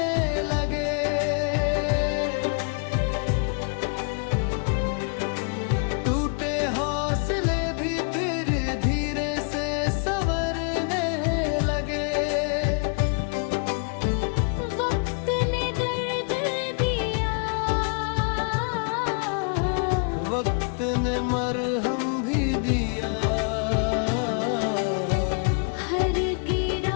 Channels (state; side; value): quieter; right; 39.7 dB